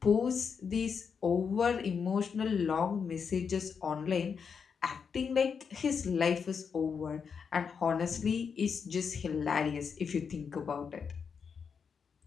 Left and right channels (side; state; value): right; quieter; 6.3 dB